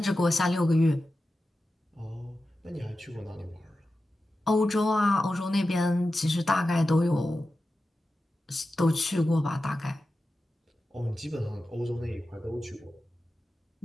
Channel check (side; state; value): both; normal; correlation 0.92